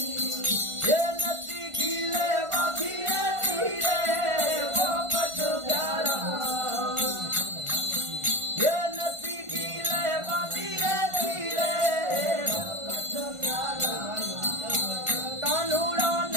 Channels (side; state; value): left; late; 1.4 ms